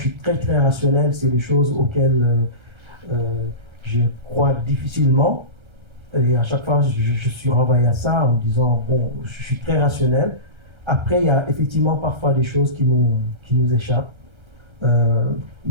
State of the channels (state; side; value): late; left; 1.3 ms